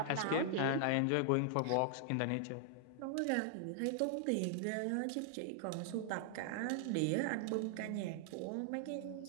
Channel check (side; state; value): both; different; correlation 0.00